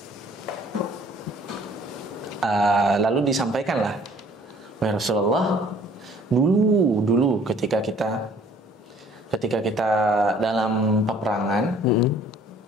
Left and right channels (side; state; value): both; normal; correlation 0.56